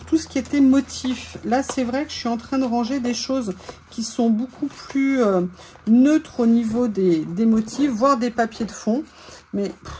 tout ce qui était motif. Là, c'est vrai que je suis en train de ranger des choses qui sont beaucoup plus neutres au niveau des motifs, voire des papiers de fond. Mais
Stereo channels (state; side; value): identical; both; correlation 1.00